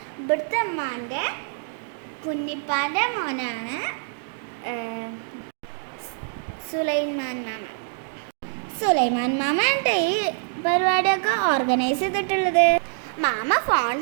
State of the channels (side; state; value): left; silent; digital silence